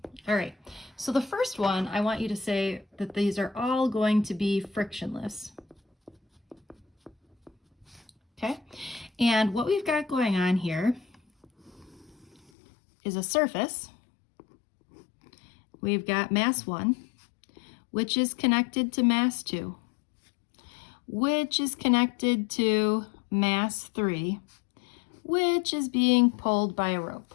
All right, so the first one, I want you to say that these are all going to be frictionless. Okay, and what we've got going on here is a surface. We've got mass 1, which is connected to mass 2, which is connected to mass 3, which is being pulled by a rope.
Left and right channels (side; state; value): right; drops out; at 12.4 s